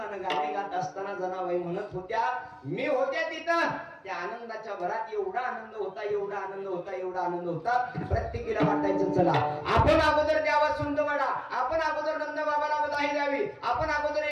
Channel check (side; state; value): both; identical; correlation 1.00